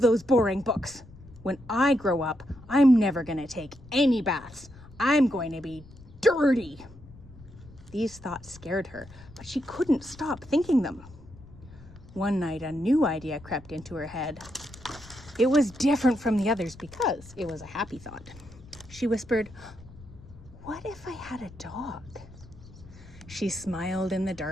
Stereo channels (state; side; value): noise; left; rumble, 20 dB below the sound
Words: those boring books. When I grow up, I'm never going to take any baths. I'm going to be dirty." These thoughts scared her, but she couldn't stop thinking them. One night, a new idea crept into her head. It was different from the others because it was a happy thought. She whispered, "What if I had a dog?" She smiled in the